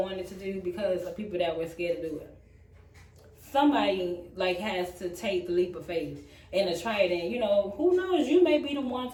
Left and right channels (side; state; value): both; identical; correlation 1.00